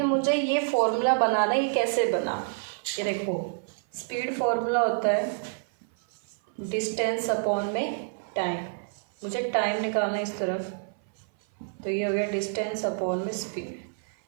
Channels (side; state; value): left; silent; 56 dB below the other